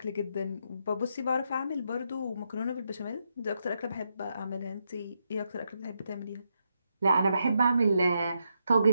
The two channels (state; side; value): inverted; both; correlation -0.81